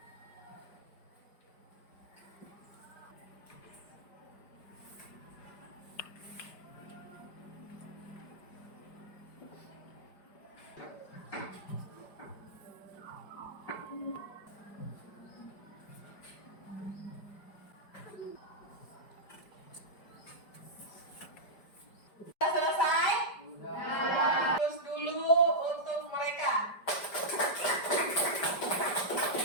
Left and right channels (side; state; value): right; late; 5.0 ms